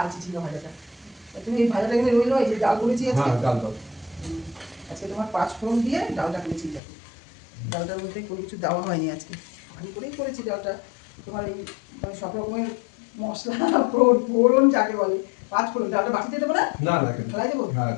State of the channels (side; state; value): right; drops out; at 6.8 s